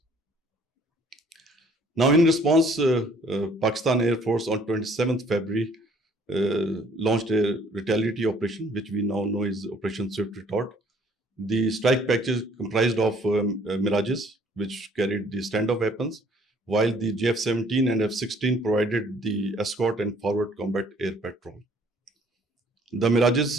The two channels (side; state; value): both; normal; correlation 0.59